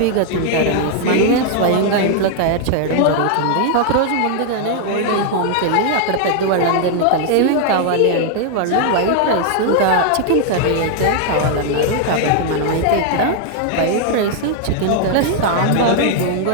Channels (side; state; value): both; different; correlation 0.00